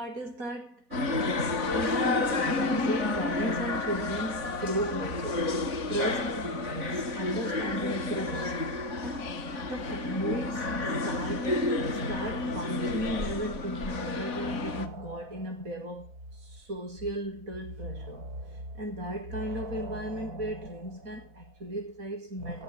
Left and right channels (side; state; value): left; late; 4.0 ms